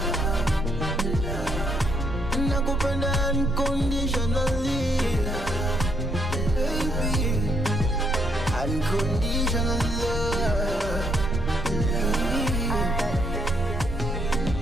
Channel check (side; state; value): right; noise; rumble, 7 dB below the sound